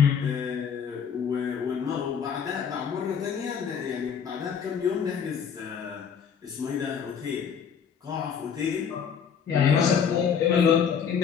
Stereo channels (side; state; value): right; quieter; 7.2 dB